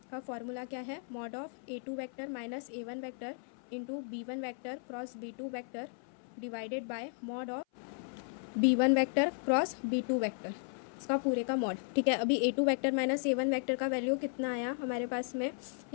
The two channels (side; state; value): right; silent; 54 dB below the other